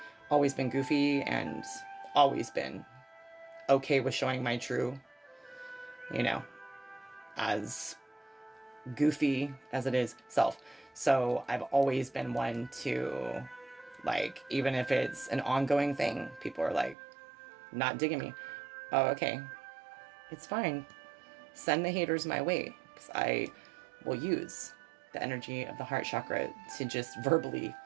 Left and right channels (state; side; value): drops out; left; at 16.9 s